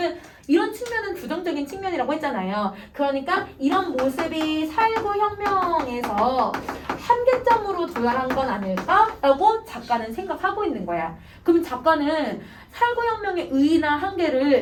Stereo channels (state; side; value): identical; both; correlation 1.00